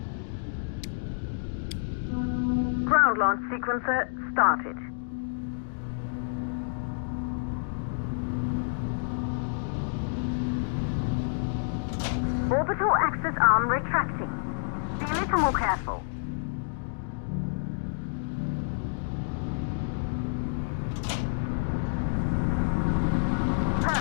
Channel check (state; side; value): silent; right; digital silence